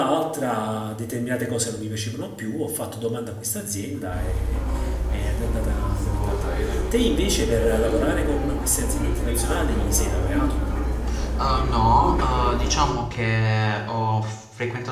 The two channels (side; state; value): both; identical; correlation 1.00